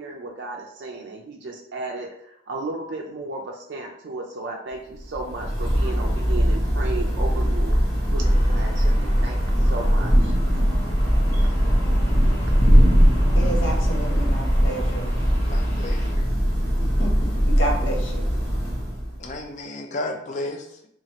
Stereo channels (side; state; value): both; normal; correlation 0.93